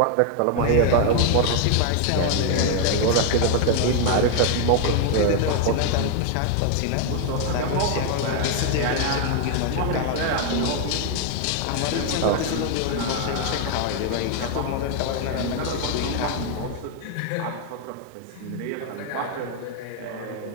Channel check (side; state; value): both; different; correlation 0.00